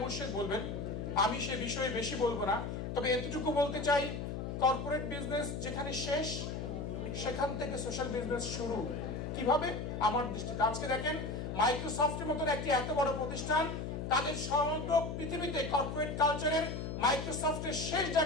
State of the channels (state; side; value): noise; left; hum, 5 dB below the sound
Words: মুর্শেদ বলবেন, আমি সে বিষয়ে বেশি বলবো না। তবে এতটুকু বলতে চাই, কর্পোরেট বিজনেস যেখানে শেষ সেখান থেকে সোশ্যাল বিজনেস শুরু। কিভাবে? আমার দৃষ্টিতে আজকে দেখেন মাইক্রোসফটের মতন একটি এত বড় প্রতিষ্ঠান তাদের সমগ্র পৃথিবীতে কর্পোরেট কালচারের মাইক্রোসফটের শেষ